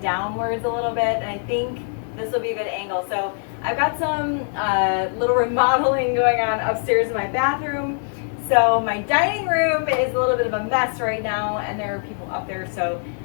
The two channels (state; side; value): silent; right; 56 dB below the other